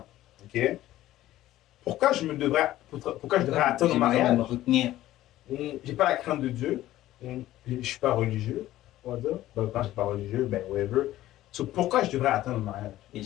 Ok? Pourquoi je devrais attendre J'aimerais le mariage? me retenir. J'ai pas la crainte de Dieu. Je suis pas religieux, on va dire. Ben, quand je suis pas religieux, ben whatever. So, pourquoi je devrais attendre le mariage? Et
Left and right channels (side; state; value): right; quieter; 14.7 dB